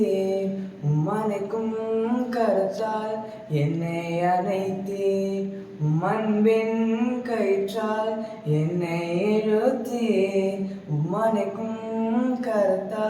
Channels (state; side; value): identical; both; correlation 1.00